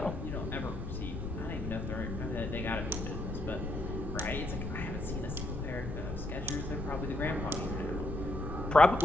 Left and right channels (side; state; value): left; noise; rumble, 5 dB below the sound